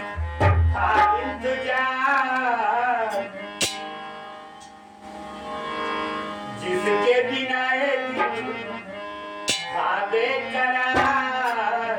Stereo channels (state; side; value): identical; both; correlation 1.00